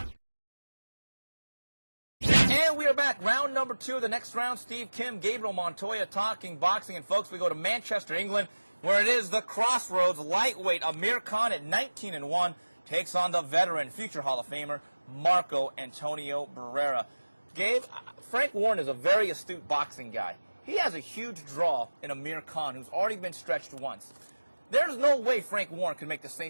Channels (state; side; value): inverted; both; correlation -1.00